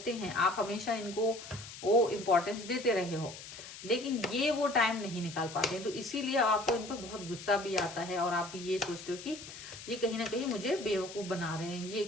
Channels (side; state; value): left; noise; hiss, 13 dB below the sound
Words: हैं, आप हमेशा इनको वो इम्पोर्टेंस देते रहे हो, लेकिन ये वो टाइम नहीं निकाल पाते हैं, तो इसीलिए आपको इन पर बहुत गुस्सा भी आता है, और आप ये सोचते हो कि ये कहीं ना कहीं मुझे बेवकूफ बना रहे हैं, ये